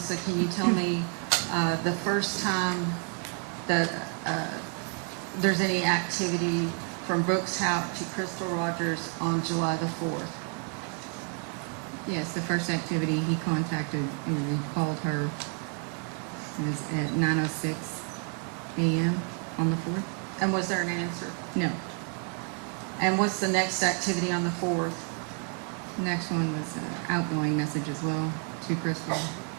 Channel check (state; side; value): quieter; left; 38.6 dB